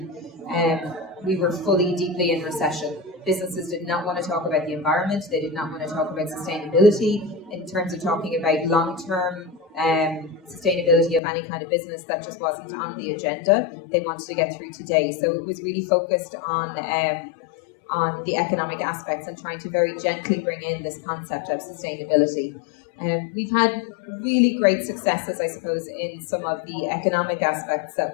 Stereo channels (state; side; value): drops out; right; at 11.2 s